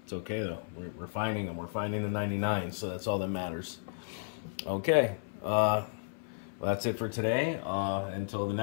It's okay though. We're finding them. We're finding the 99, so that's all that matters. Okay. Well, that's it for today. Until the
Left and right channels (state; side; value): silent; right; 56 dB below the other